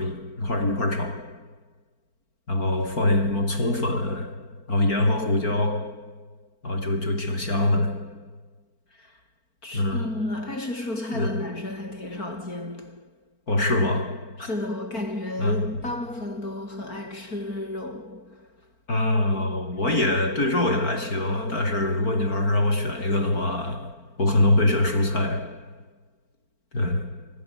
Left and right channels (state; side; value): late; right; 4.4 ms